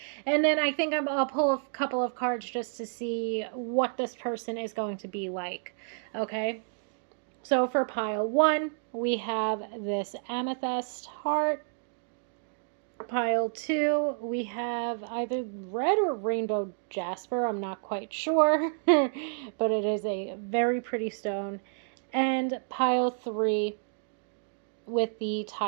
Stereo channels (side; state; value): left; silent; digital silence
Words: And then I think I'll pull a couple of cards just to see what this person is going to be like. Okay. So for pile 1, we have this amethyst heart. Pile 2, we have either red or rainbow jasper. I'm not quite sure, but it is a very pretty stone. And pile 3 with the